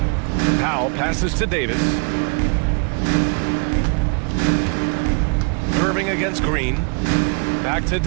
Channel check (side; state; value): left; quieter; 36.9 dB